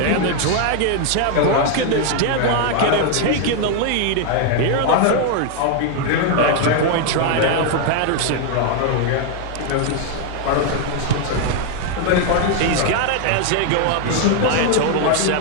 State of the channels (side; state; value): both; different; correlation 0.01